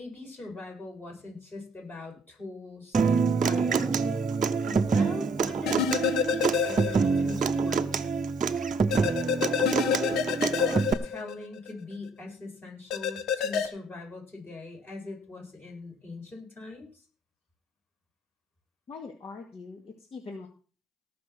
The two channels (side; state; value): both; normal; correlation 0.63